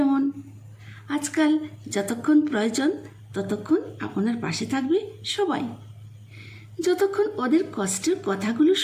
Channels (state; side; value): identical; both; correlation 1.00